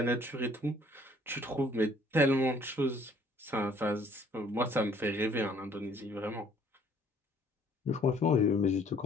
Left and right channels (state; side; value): normal; both; correlation 0.60